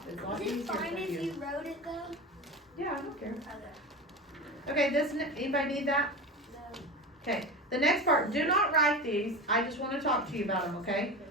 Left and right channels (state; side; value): normal; both; correlation 0.27